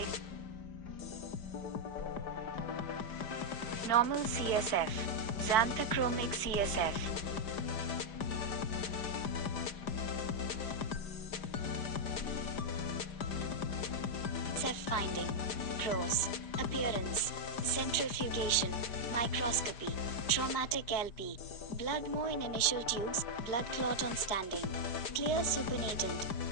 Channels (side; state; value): right; late; 5.0 ms